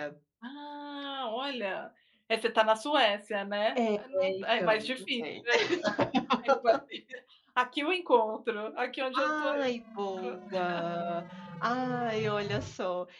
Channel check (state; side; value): identical; both; correlation 1.00